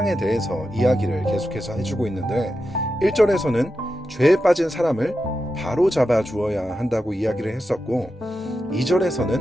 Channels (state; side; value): normal; both; correlation 0.89